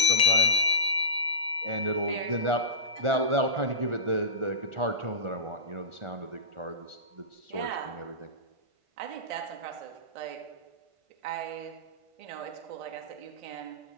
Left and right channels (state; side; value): late; left; 1.4 ms